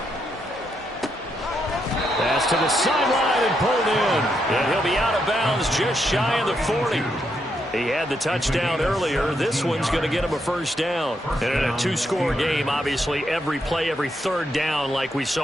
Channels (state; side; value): normal; both; correlation 0.79